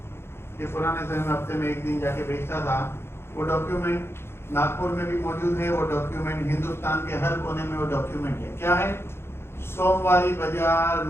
कि पुराने समय में हफ्ते में एक दिन जाके बेचता था। वो डॉक्यूमेंट नागपुर में भी मौजूद है, वो डॉक्यूमेंट हिंदुस्तान के हर कोने में वो डॉक्यूमेंट है। क्या है? सोमवारी बाजार,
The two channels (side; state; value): right; late; 0.12 ms